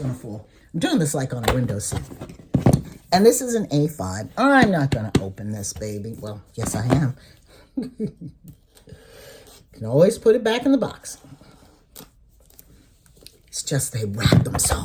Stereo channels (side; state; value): both; identical; correlation 1.00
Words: to fall. I'm doing this like on a window seat. And this is an A5. I'm not going to open this, baby. Well, yes, I am. Can always put it back in the box. It's just they wrap them